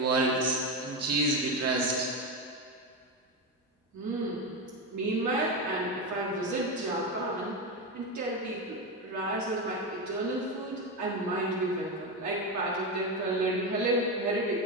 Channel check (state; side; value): normal; both; correlation 0.14